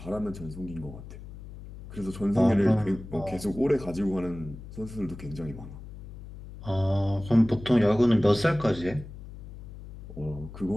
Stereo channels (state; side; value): noise; left; hum, 14 dB below the sound